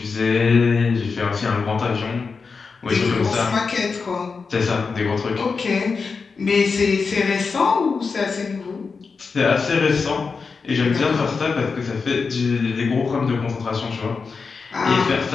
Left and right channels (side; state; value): right; quieter; 4.9 dB